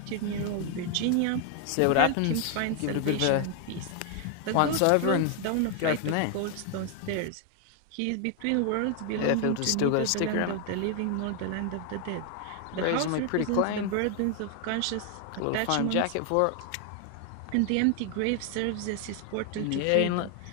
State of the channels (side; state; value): both; different; correlation 0.00